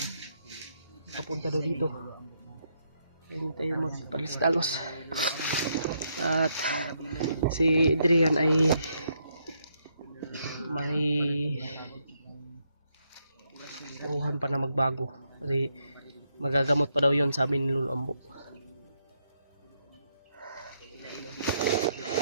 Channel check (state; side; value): inverted; both; correlation -0.77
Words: papunta daw dito. Hindi tayo magpalistalos. At si Adrian ay may turuhan pa na magbago kasi magagamot pa daw yun, sabi ni Lolo Ambo.